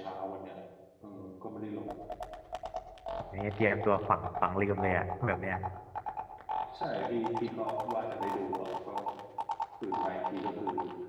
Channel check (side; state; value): both; identical; correlation 1.00